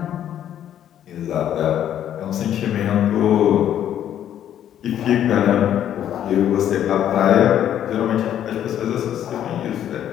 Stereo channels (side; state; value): right; quieter; 10.6 dB